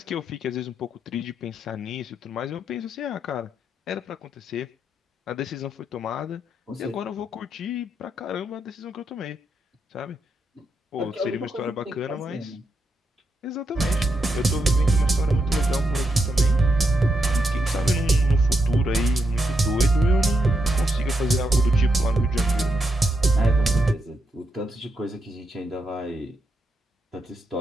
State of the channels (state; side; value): normal; both; correlation 0.82